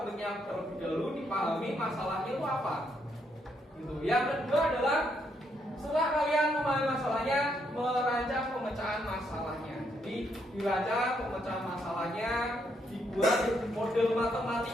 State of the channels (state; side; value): normal; both; correlation 0.75